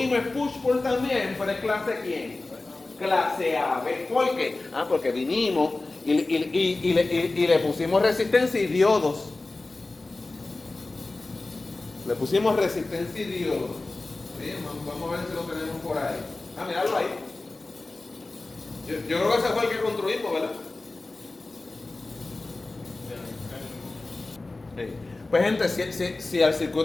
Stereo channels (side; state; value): right; quieter; 3.2 dB